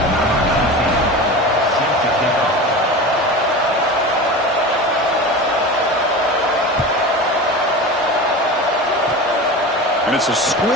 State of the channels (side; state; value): both; normal; correlation 0.30